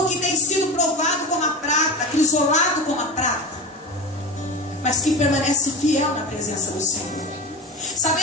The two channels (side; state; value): both; normal; correlation 0.26